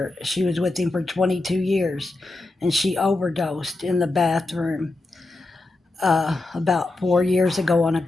She was with him for 22 years, and she overdosed in the bathroom about 4 years ago on a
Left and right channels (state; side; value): quieter; right; 3.0 dB